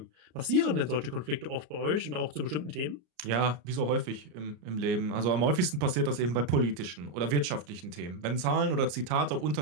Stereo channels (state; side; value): late; left; 33 ms